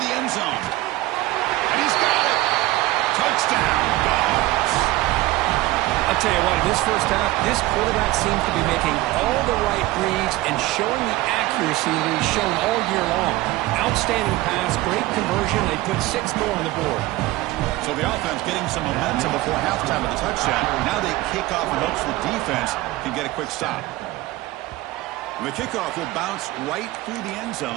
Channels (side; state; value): left; quieter; 18.3 dB